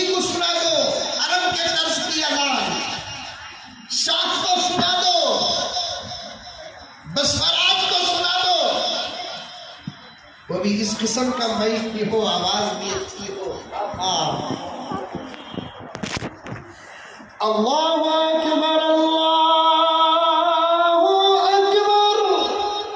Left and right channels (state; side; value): identical; both; correlation 1.00